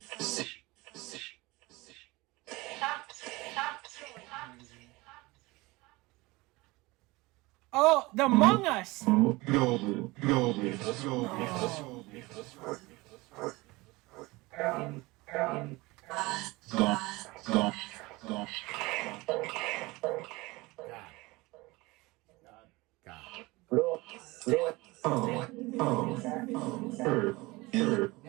Oh, the Among Us.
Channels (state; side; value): quieter; left; 22.3 dB